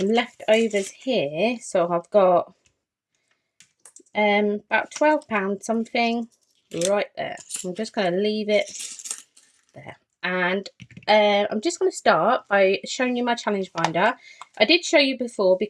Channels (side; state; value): both; identical; correlation 1.00